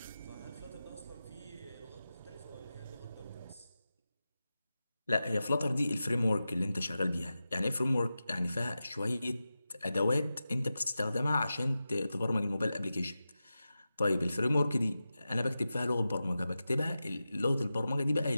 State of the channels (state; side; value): inverted; both; correlation -0.93